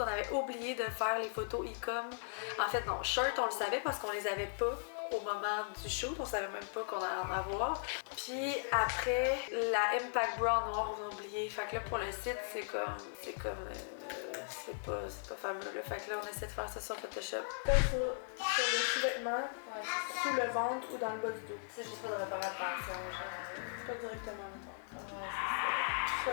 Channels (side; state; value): right; silent; digital silence